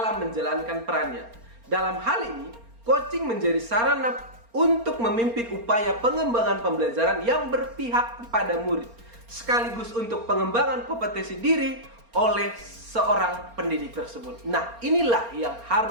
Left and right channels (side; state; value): left; late; 4.3 ms